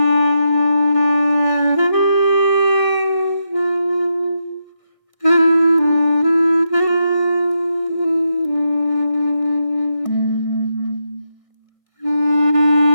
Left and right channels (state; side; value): late; right; 1.6 ms